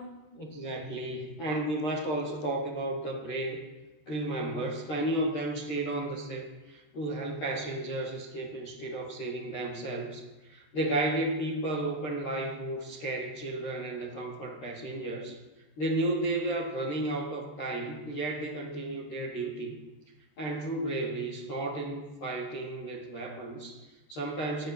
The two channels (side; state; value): right; late; 13 ms